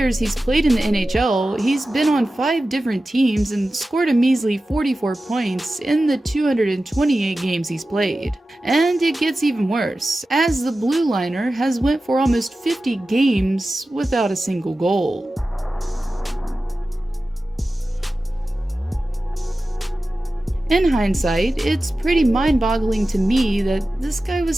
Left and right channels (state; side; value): normal; both; correlation 0.94